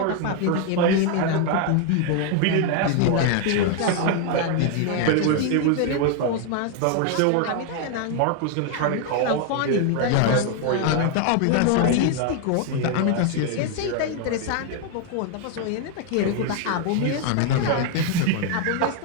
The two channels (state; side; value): different; both; correlation 0.00